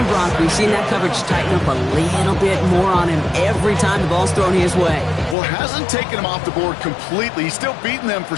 Brock. We've seen that coverage tighten up a little bit more on him every time the ball's thrown his way. Well, hasn't taken him off the board completely. He's still beating them for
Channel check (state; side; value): drops out; right; at 5.4 s